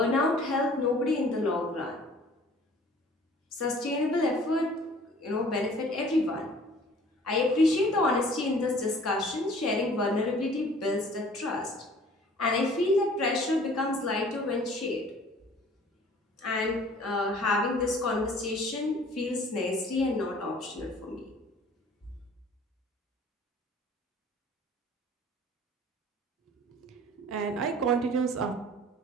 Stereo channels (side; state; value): both; normal; correlation 0.51